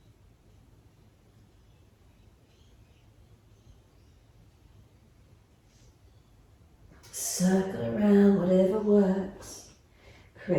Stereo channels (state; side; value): identical; both; correlation 1.00